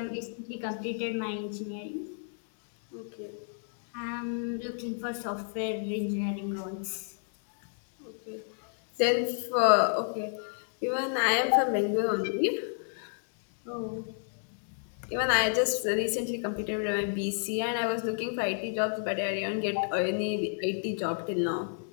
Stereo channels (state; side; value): silent; right; 57 dB below the other